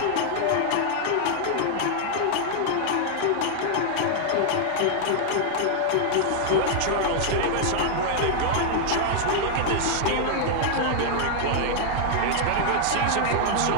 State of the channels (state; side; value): different; both; correlation -0.01